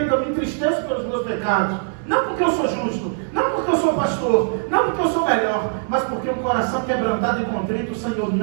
eu me entristeço pelos meus pecados. Não porque eu sou justo, não porque eu sou pastor, não porque eu sou melhor, mas porque um coração quebrantado e contrito, o Senhor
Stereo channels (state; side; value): silent; left; digital silence